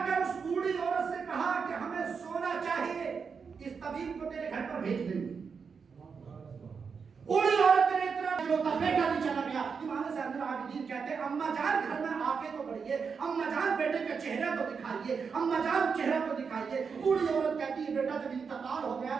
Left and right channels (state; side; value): quieter; left; 5.8 dB